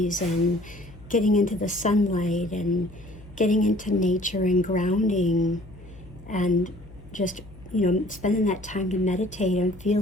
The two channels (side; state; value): left; noise; hum, 20 dB below the sound